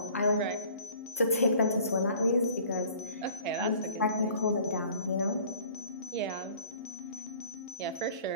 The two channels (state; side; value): inverted; both; correlation -0.50